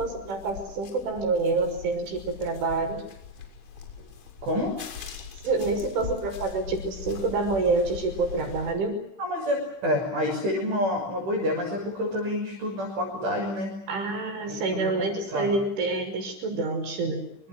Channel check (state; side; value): late; left; 15 ms